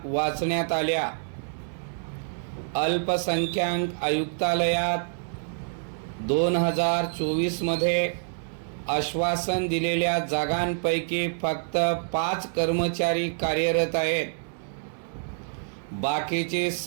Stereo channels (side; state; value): left; silent; digital silence